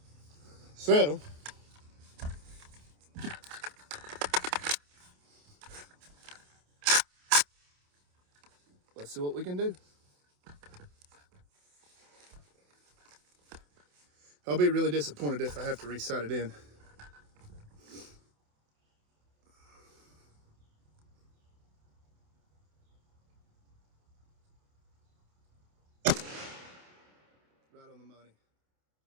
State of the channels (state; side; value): late; left; 28 ms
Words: So, let's see what we can do. I'll be really disappointed if I have to re-sight it in. Right on the money.